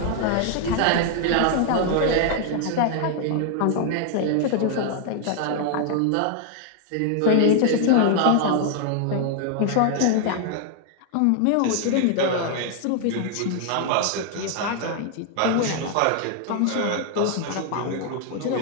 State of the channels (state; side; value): different; both; correlation 0.00